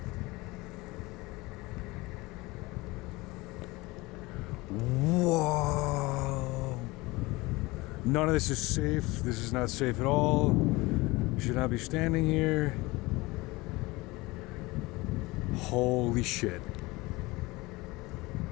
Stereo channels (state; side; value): quieter; right; 22.1 dB